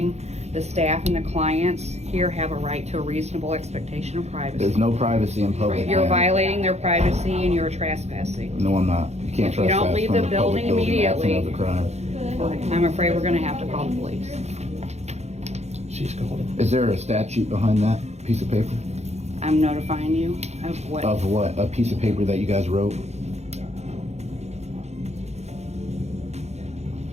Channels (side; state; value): left; late; 0.32 ms